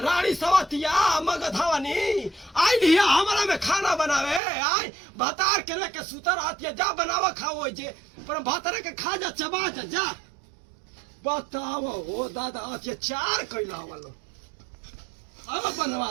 रानी सवतिया मगधवानी आई लिया हमारा में खाना बनावे आई भतार के लेके सुतर आती है जा बनावा खाओ जे पर भतार के खा जा चबा जा बताओ हो दादा अत्याचार कैला वालो अब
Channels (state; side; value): drops out; left; at 4.4 s